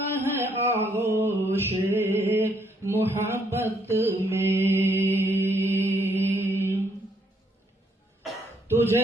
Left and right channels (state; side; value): normal; both; correlation 0.71